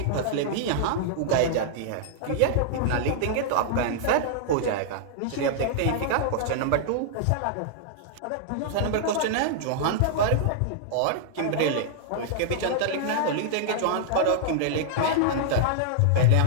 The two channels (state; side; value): different; both; correlation -0.01